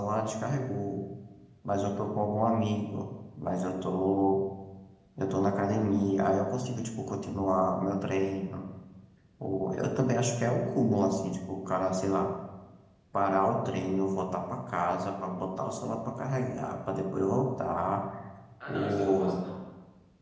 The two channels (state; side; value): identical; both; correlation 1.00